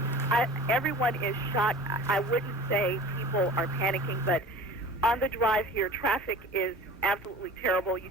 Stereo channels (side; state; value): both; normal; correlation 0.41